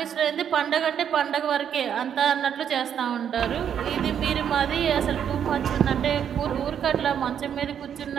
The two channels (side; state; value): left; quieter; 8.7 dB